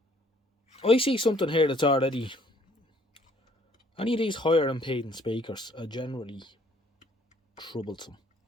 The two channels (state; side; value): normal; both; correlation 0.61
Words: I see something here that's already... Any of these higher impedance speakers are generally troublesome.